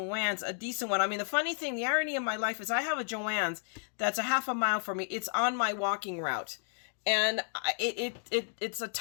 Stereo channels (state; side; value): silent; right; 56 dB below the other